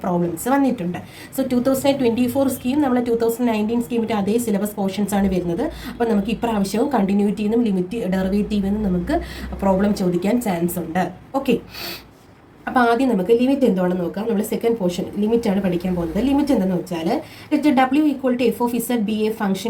പ്രോബ്ലംസ് വന്നിട്ടുണ്ട്. സോ 2024 സ്കീം നമ്മൾ 2019 സ്കീമിൻ്റെ അതേ സിലബസ് പോർഷൻസ് ആണ് വരുന്നത്. അപ്പോൾ നമുക്ക് ഇപ്രാവശ്യവും കണ്ടിന്യൂറ്റിനും ലിമിറ്റ്, ഡെറിവേറ്റീവിനും നമുക്ക് പ്രോബ്ലം ചോദിക്കാൻ ചാൻസ് ഉണ്ട്. ഓക്കെ, അപ്പോൾ ആദ്യം നമുക്ക് ലിമിറ്റ് എന്താണെന്ന് നോക്കാം. നമ്മൾ സെക്കൻഡ് പോർഷൻ ലിമിറ്റാണ് പഠിക്കാൻ പോകുന്നത്. ലിമിറ്റ് എന്താണെന്ന് വെച്ചാൽ W equal to f of z be a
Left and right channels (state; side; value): identical; both; correlation 1.00